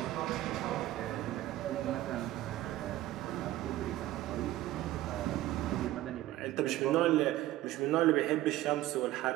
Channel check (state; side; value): quieter; left; 15.3 dB